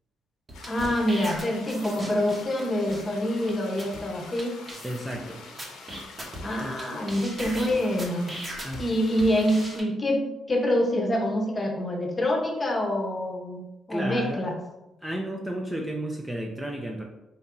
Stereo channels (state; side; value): normal; both; correlation 0.83